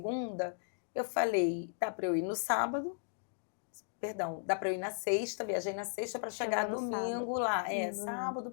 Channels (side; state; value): right; silent; digital silence